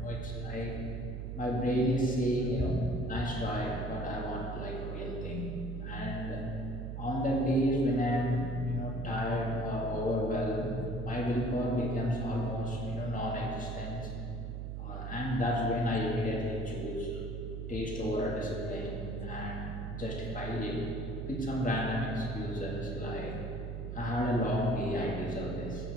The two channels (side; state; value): right; noise; hum, 5 dB below the sound